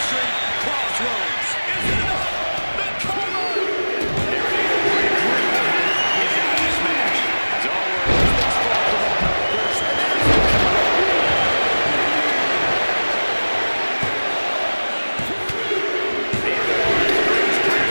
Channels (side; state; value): both; inverted; correlation -1.00